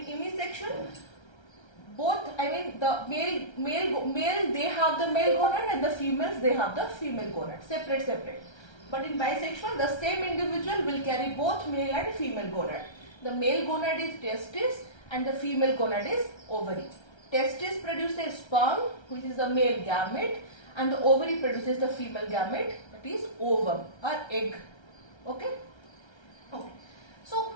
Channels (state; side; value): late; right; 1.3 ms